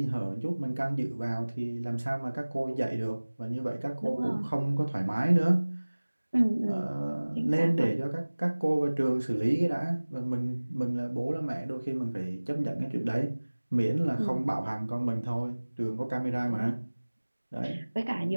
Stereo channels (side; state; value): both; inverted; correlation -1.00